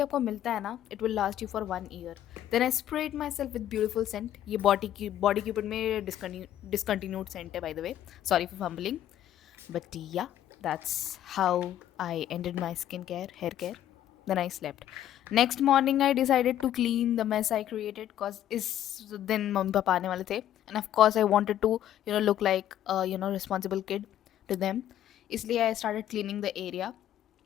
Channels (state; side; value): quieter; right; 11.7 dB